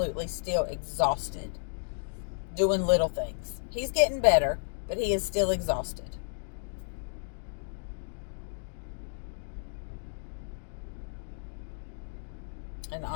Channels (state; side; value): silent; right; digital silence